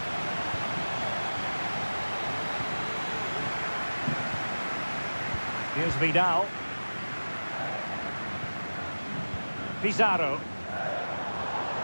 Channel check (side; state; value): both; inverted; correlation -1.00